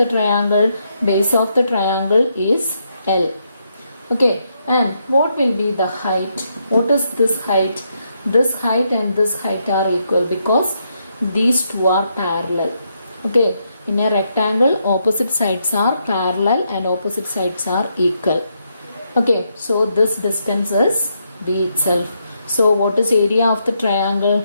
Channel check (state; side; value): inverted; both; correlation -0.79